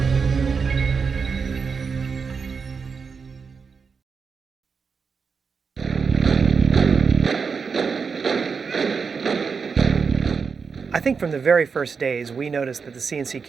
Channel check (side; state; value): left; quieter; 5.5 dB